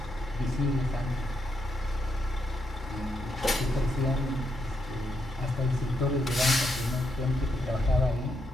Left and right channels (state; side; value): normal; both; correlation 0.79